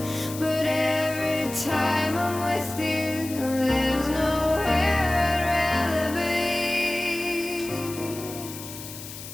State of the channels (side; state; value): left; noise; hiss, 12 dB below the sound